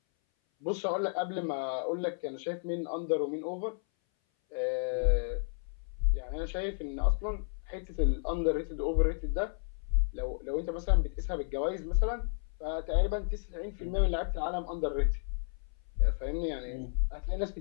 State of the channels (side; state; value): right; silent; 56 dB below the other